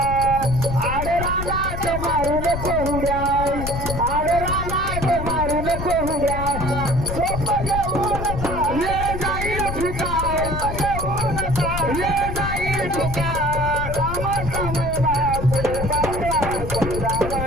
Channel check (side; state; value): left; noise; rumble, 5 dB below the sound